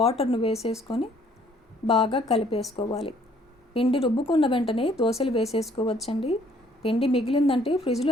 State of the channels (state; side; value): normal; both; correlation 0.61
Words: వేసేసుకొని బాగా కలిపేసుకోవాలి. పిండి రుబ్బుకున్న వెంటనే దోశలు వేసేసుకోవచ్చండి. పిండి మిగిలిందంటే